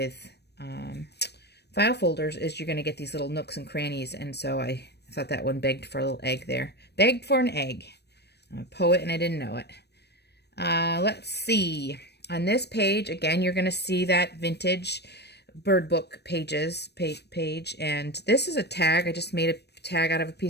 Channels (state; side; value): late; right; 0.48 ms